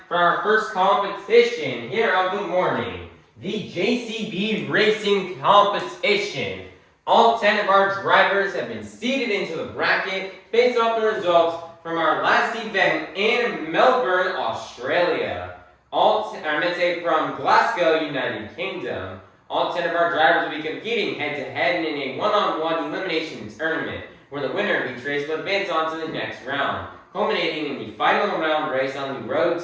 for our first competition here of the morning, the JCB Racing Competition. All 10 of our drivers have been seeded into the bracket based off the results from our last event in Melbourne, Australia. From Glasgow, United Kingdom. All 10 of our drivers will be competing head-to-head in a one-on-one elimination tournament, where the winner of each race will advance on to the next round, culminating in the final round race on the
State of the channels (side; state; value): both; identical; correlation 1.00